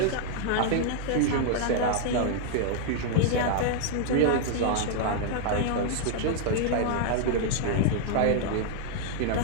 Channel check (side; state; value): both; different; correlation 0.00